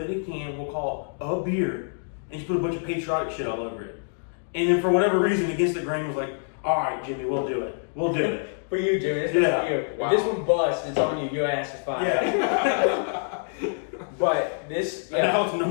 it in a can, we'll call it a beer, and just put a bunch of patriotic shit all over it. And then for whatever reason, Against the Grain was like, all right, Jimmy, we'll do it. We'll do it. For you, Jimmy. This Yeah. for you. Wow. If this one busts, it's on you. Your ass is fine. Yeah. But this, And now it's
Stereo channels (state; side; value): silent; right; digital silence